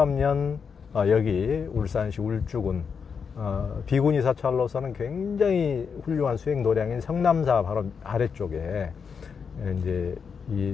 여기 울산시 울주군 비구니 사찰로서는 굉장히 훌륭한 수행 도량인 성남사 바로 아래쪽에 이제 이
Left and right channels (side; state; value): right; quieter; 6.1 dB